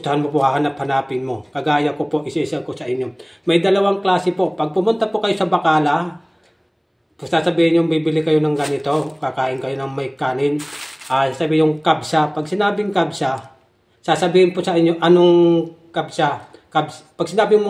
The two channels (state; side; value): identical; both; correlation 1.00